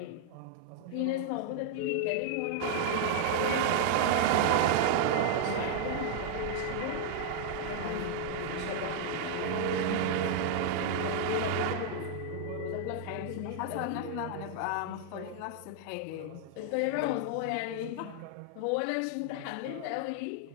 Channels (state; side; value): different; both; correlation 0.00